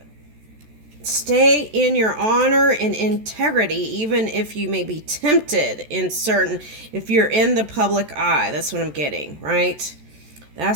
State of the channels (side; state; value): left; late; 14 ms